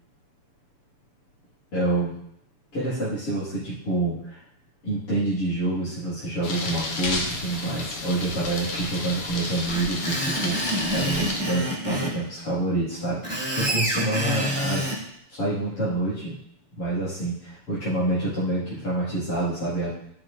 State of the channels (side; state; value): right; late; 6.9 ms